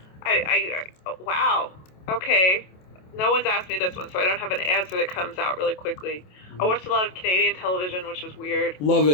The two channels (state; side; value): late; right; 27 ms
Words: Wow. Okay. No one's asked me this one, so I don't have an answer that comes out really quickly. I watched a lot of Canadian television, which was weird. Love